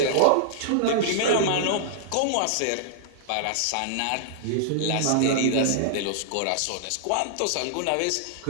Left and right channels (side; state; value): both; different; correlation -0.01